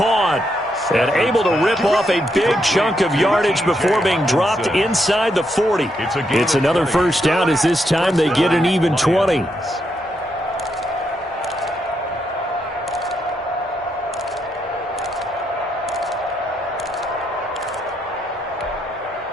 And able to rip off a big chunk of yardage before being dropped inside the 40. It's another first down as this time they get an even 20.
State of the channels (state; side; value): normal; both; correlation 0.79